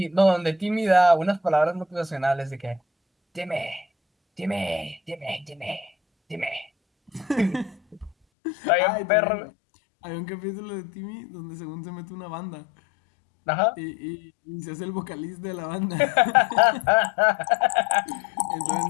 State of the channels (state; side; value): drops out; right; at 8.2 s